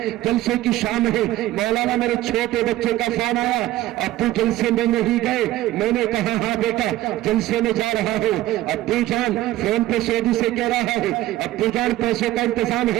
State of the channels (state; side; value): quieter; left; 15.6 dB